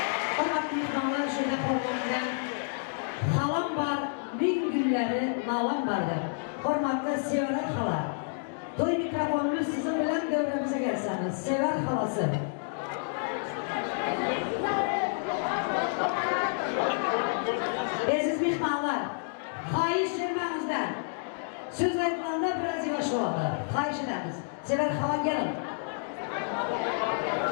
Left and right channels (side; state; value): right; silent; digital silence